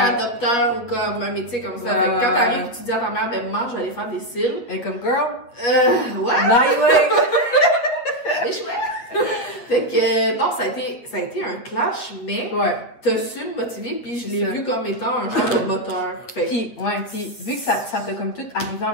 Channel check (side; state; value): right; late; 8.6 ms